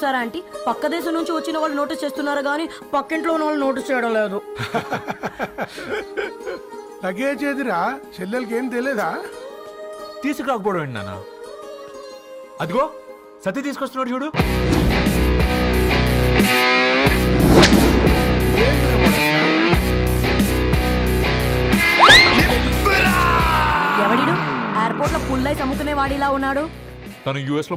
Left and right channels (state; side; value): identical; both; correlation 1.00